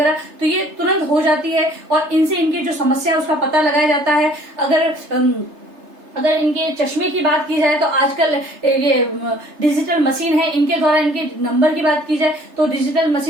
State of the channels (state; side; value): late; left; 3.3 ms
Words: तो ये तुरंत हो जाती है और इनसे इनकी जो समस्या है उसका पता लगाया जाता है। अगर इनके चश्मे की बात की जाए तो आजकल ये डिजिटल मशीन है, इनके द्वारा इनके नंबर की बात की जाए तो डिजिटल